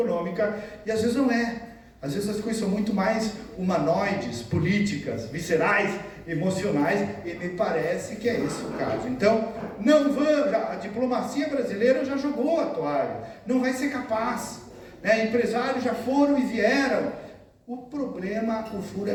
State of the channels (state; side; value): identical; both; correlation 1.00